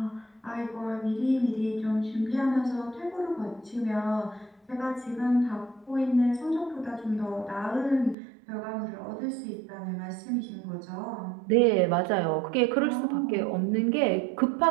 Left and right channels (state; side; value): drops out; left; at 8.2 s